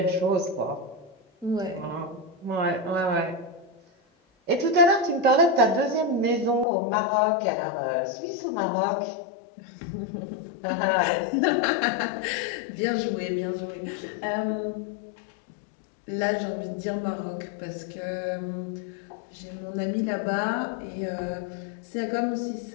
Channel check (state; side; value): drops out; right; at 6.7 s